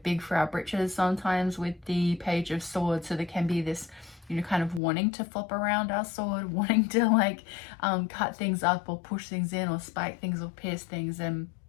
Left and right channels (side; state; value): right; drops out; at 4.8 s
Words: big for our britches sometimes with the Page of Swords. So there can be this, kind of wanting to flop around our sword, wanting to cut things up or push things in or spike things or pierce things. And